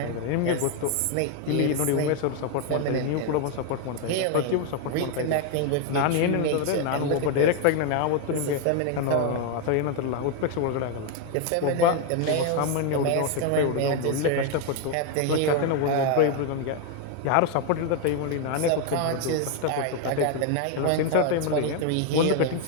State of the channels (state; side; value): different; both; correlation 0.01